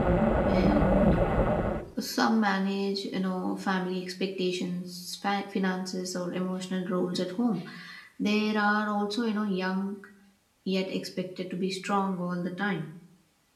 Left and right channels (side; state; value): both; identical; correlation 1.00